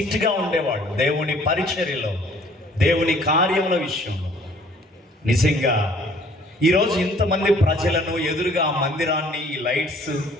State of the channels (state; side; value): normal; both; correlation 0.57